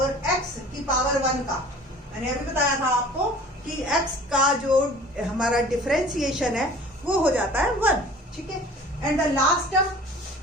x की पावर 1 का, मैंने अभी बताया था आपको कि x का जो हमारा डिफरेंशिएशन है वो हो जाता है 1, ठीक है। And the last term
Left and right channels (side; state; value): both; normal; correlation 0.46